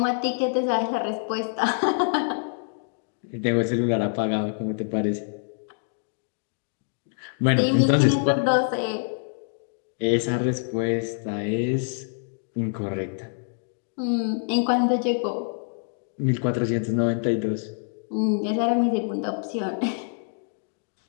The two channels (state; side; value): silent; right; digital silence